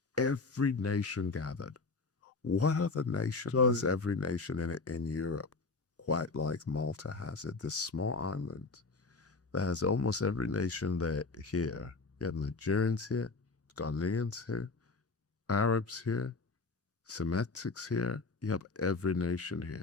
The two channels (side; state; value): right; quieter; 3.9 dB